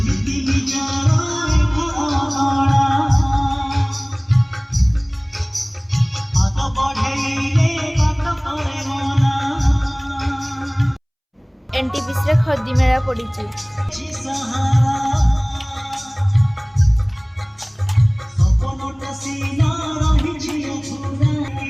एनटीपीसी रे खदी मेला पड़ी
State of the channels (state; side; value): identical; both; correlation 1.00